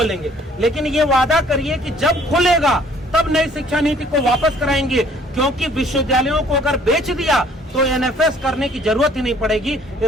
लेकिन ये वादा करिए कि जब खुलेगा तब नई शिक्षा नीति को वापस कराएंगे, क्योंकि विश्वविद्यालयों को अगर बेच दिया तो एनएफएस करने की जरूरत ही नहीं पड़ेगी।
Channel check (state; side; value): normal; both; correlation 0.58